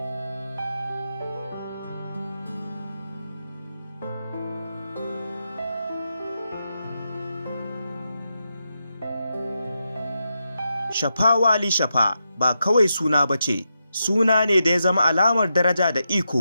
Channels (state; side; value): inverted; both; correlation -0.86